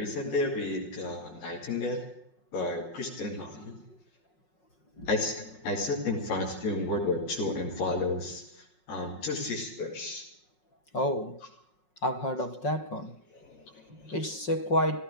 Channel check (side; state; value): right; late; 5.5 ms